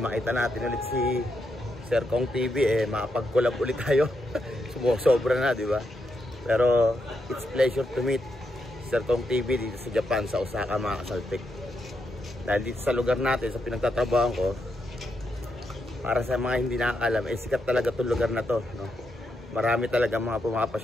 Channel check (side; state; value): both; normal; correlation 0.82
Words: makita natin ulit si Sir Kong TV, makapag-collab ulit tayo. Sobra na, di ba? Pero it's pleasure to meet Sir Kong TV dito sa Japan, sa Osaka mga kasaltik. Dahil dito sa lugar natin, sa pinagtatrabahan ko, para sa mga hindi nakakalam, sikat talaga itong lugar na to, no? Marami talaga mga